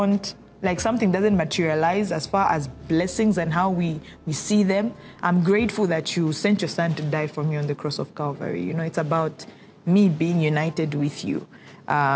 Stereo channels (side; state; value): both; identical; correlation 1.00